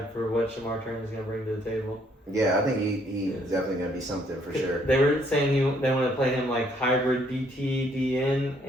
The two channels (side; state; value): both; normal; correlation 0.67